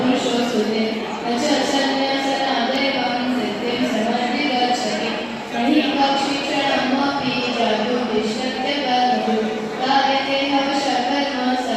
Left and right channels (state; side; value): identical; both; correlation 1.00